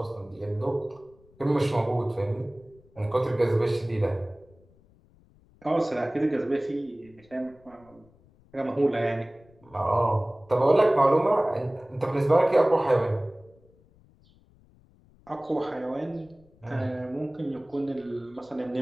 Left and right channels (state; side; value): noise; left; rumble, 29 dB below the sound